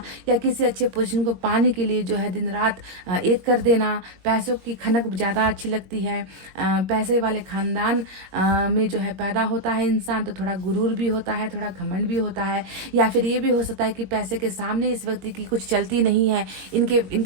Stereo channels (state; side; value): late; left; 21 ms